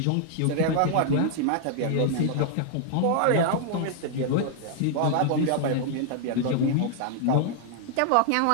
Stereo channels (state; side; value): different; both; correlation -0.01